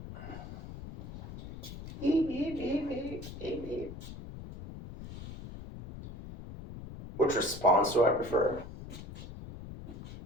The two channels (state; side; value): noise; left; rumble, 11 dB below the sound